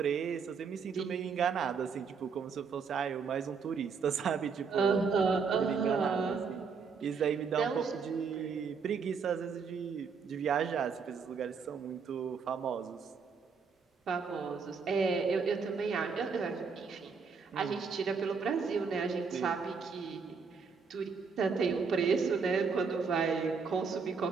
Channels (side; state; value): left; quieter; 5.5 dB